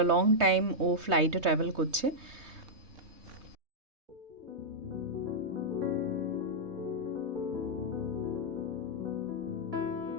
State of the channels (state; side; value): late; left; 3.2 ms